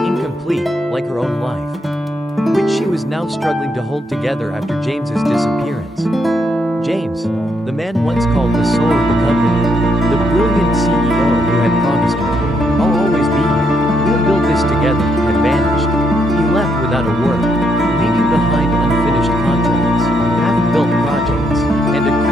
like her own life, which she was now struggling to hold together after James's disappearance. James, the man once called the soul of the company, the brilliant CEO who had promised her, "I'll always be here, we'll build this together," had vanished. He left without a word, leaving behind unfinished contracts, half-built projects, and a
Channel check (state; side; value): normal; both; correlation 0.76